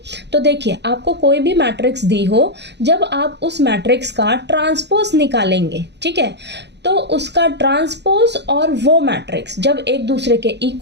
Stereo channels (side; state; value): left; late; 0.50 ms